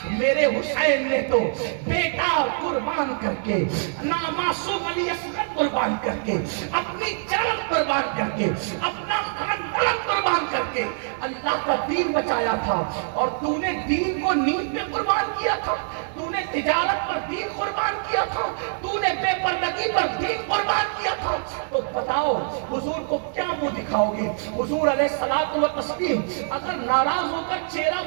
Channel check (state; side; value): silent; left; 55 dB below the other